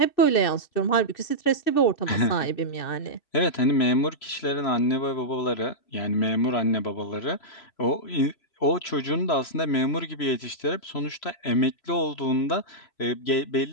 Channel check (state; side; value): late; right; 3.0 ms